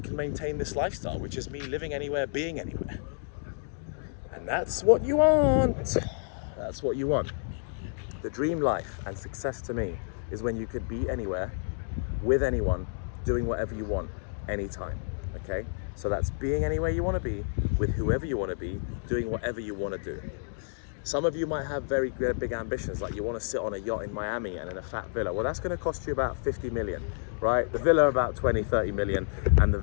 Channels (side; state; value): right; silent; digital silence